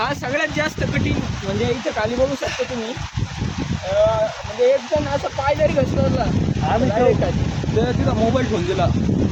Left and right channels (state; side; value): identical; both; correlation 1.00